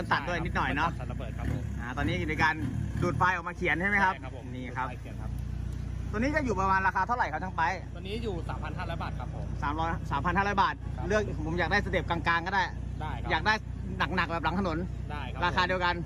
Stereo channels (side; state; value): both; identical; correlation 1.00